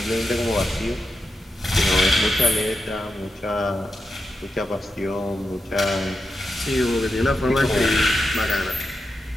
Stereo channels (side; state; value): both; normal; correlation 0.87